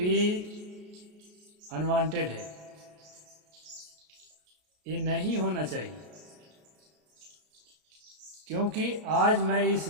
अनवांटेड है। ये नहीं होना चाहिए। क्योंकि आज मैं इस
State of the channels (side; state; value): left; late; 33 ms